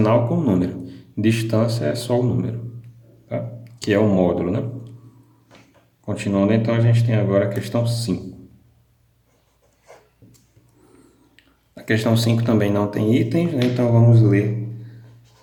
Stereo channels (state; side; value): identical; both; correlation 1.00